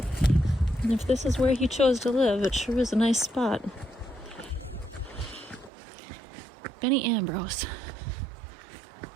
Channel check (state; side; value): drops out; left; at 5.7 s